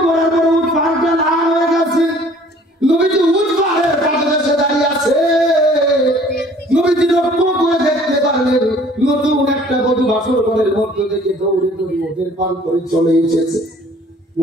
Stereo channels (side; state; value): both; normal; correlation 0.54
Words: পড়ার পর উট পাহাড়টা লাল হয়ে গেছে। নবীজি উট পাহাড়ের পাদদেশে দাঁড়িয়ে আছে। নবীজি লক্ষ্য করে দেখতে পারলেন নতুন একটা বধূ বাসর ঘরের মধ্য থেকে দৌড়ে দৌড়ে ওদের পান করে চলে এসেছে।